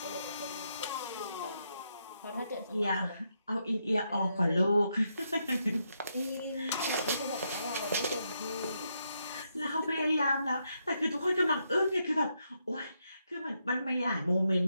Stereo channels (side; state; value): both; inverted; correlation -0.80